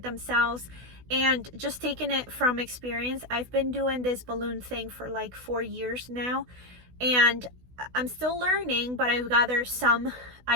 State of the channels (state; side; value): late; left; 16 ms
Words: themselves. And just taking it from experience, I've been doing this balloon thing for like 4 years now. And I'm still learning, but I've gathered some